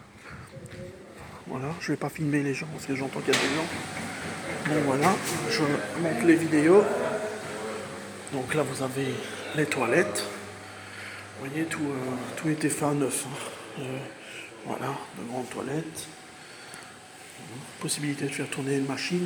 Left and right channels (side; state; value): both; identical; correlation 1.00